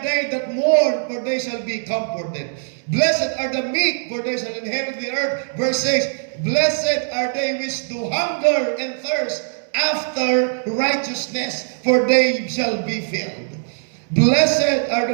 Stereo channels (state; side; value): silent; left; digital silence